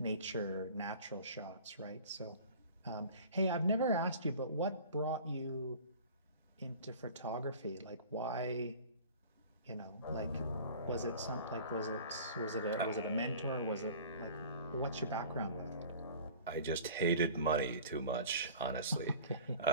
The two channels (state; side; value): inverted; both; correlation -0.43